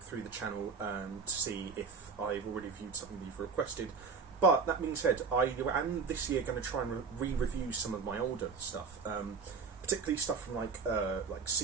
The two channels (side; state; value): left; quieter; 5.2 dB